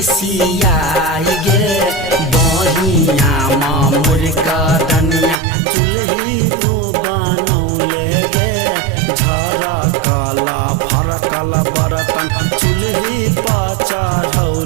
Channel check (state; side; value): drops out; left; at 5.4 s